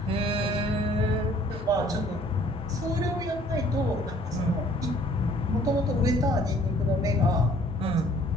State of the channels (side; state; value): both; normal; correlation 0.57